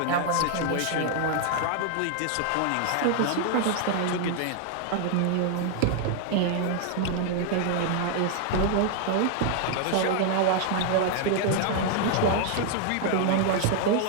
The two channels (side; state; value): both; different; correlation 0.00